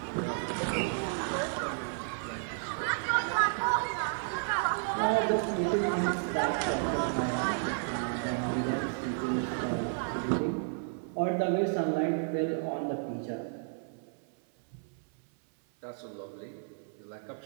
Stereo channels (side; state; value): left; silent; 56 dB below the other